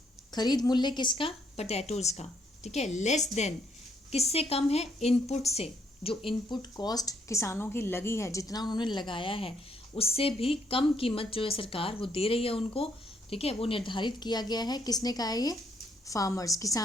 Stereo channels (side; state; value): both; normal; correlation 0.71